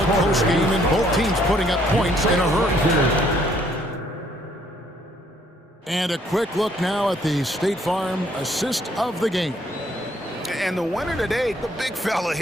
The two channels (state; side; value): normal; both; correlation 0.66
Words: close game, and both teams putting up points in a hurry. And a quick look now at the State Farm assist of the game. And the winner today, the big fella